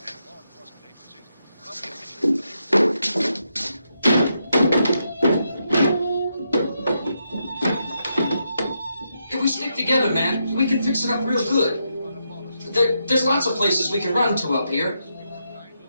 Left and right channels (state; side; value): inverted; both; correlation -0.82